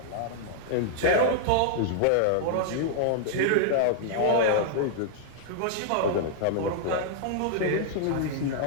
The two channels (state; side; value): different; both; correlation -0.01